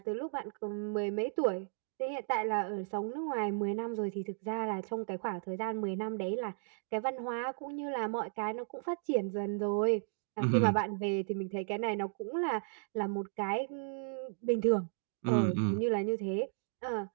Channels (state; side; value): silent; left; digital silence